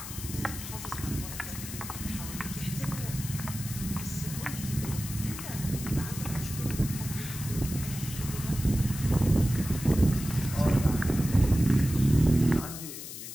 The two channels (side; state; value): left; noise; hiss, 10 dB below the sound